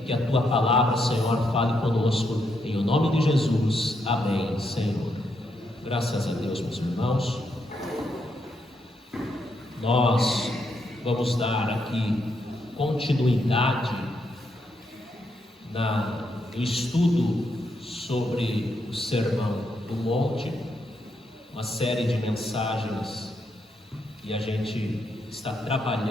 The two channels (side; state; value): both; normal; correlation 0.79